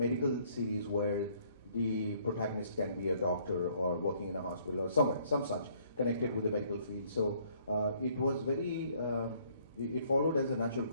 series where the protagonist can be a doctor or working in a hospital or somewhere, some such, connected with the medical field. So it was very, it followed as a natural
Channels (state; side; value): inverted; both; correlation -0.63